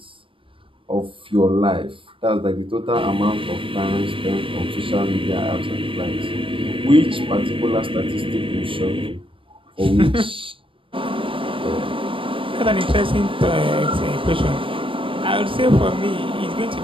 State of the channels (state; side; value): late; left; 0.25 ms